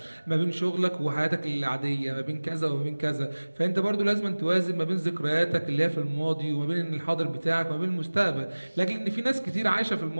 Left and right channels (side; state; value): both; inverted; correlation -1.00